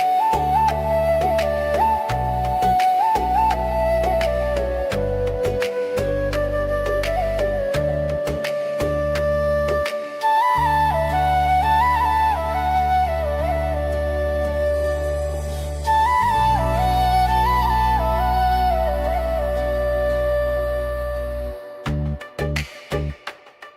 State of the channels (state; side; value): identical; both; correlation 1.00